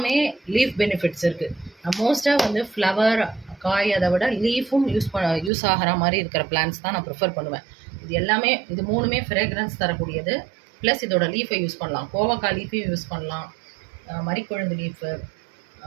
லீஃப் பெனிஃபிட்ஸ் இருக்குது. நான் மோஸ்ட்டாக வந்து ஃப்ளவர் காய் அதை விட லீஃபும் யூஸ் ஆகிற மாதிரி இருக்கிற பிளான்ட்ஸ் தான் நான் ப்ரிஃபர் பண்ணுவேன். இது 3மே ஃப்ரேக்ரன்ஸ் தரக்கூடியது. ப்ளஸ் இதோட லீஃபை யூஸ் பண்ணலாம், கோவக்காய் லீஃபையும் யூஸ் பண்ணலாம், மரிக்கொழுந்து லீஃபு,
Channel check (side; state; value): left; drops out; at 5.5 s